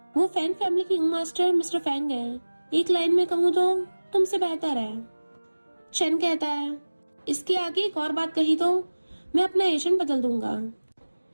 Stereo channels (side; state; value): both; inverted; correlation -1.00